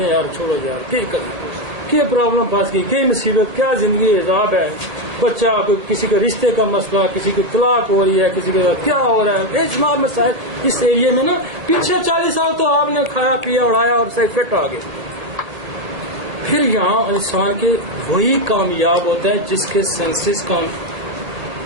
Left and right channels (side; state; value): left; late; 1.7 ms